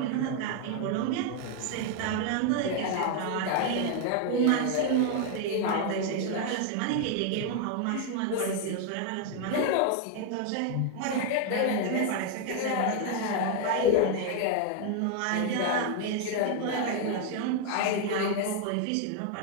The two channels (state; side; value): different; both; correlation 0.00